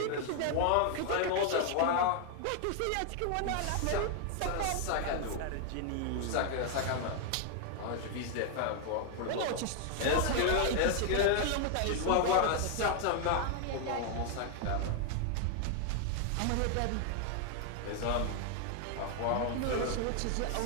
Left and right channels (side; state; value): both; different; correlation 0.00